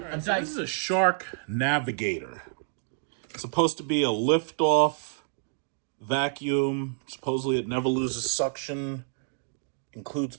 a Dyson. So this is a Shark Navigator. It's supposed to be a lift-off vacuum. Supposedly it never loses suction. Includes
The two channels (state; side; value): silent; left; digital silence